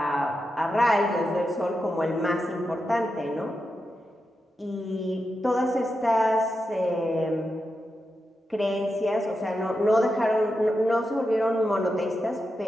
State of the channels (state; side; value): normal; both; correlation 0.88